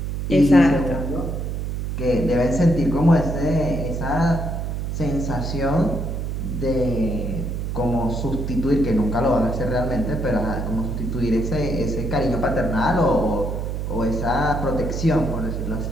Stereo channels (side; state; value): right; noise; hum, 3 dB below the sound